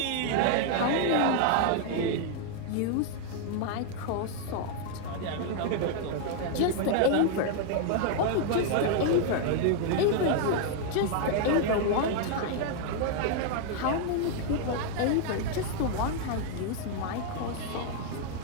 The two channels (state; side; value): different; both; correlation 0.00